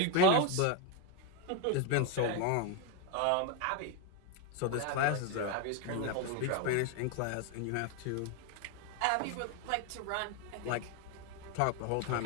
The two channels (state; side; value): different; both; correlation 0.02